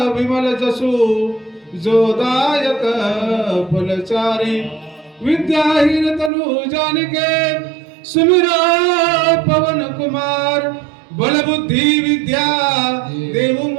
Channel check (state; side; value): drops out; left; at 6.3 s